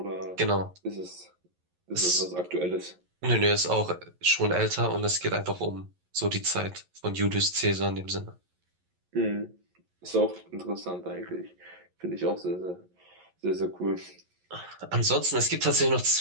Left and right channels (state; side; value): late; left; 11 ms